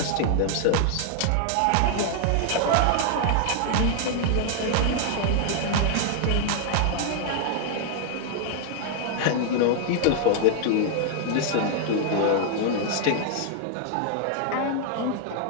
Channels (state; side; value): different; both; correlation 0.00